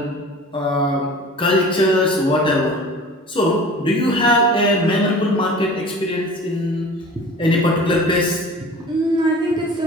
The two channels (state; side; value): normal; both; correlation 0.41